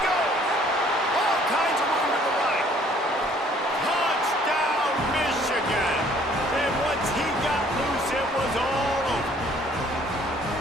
goes. All kinds of room to the right. Touchdown, Michigan. And once he got loose, it was all over.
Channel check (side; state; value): both; normal; correlation 0.59